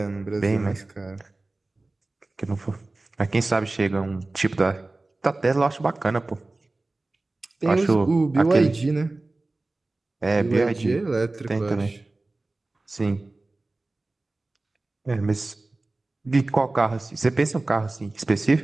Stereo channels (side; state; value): left; quieter; 3.1 dB